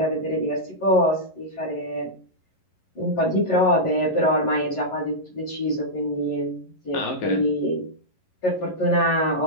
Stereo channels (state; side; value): late; right; 11 ms